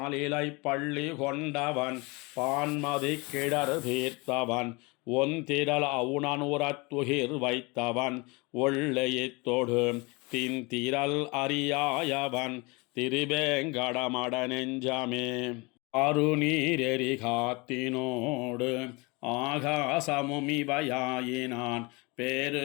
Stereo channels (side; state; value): right; quieter; 26.9 dB